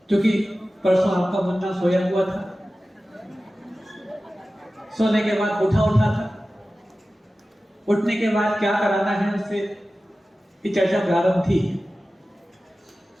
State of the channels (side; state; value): both; normal; correlation 0.95